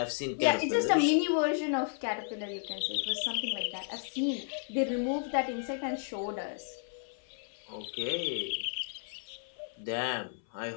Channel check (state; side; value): silent; right; 56 dB below the other